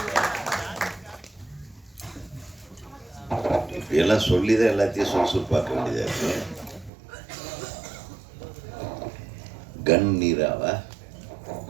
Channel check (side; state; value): left; drops out; at 6.9 s